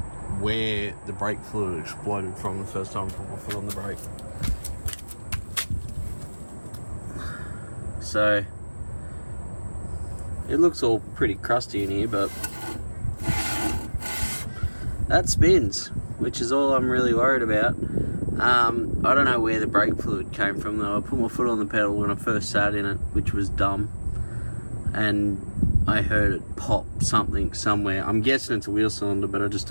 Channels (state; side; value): inverted; both; correlation -1.00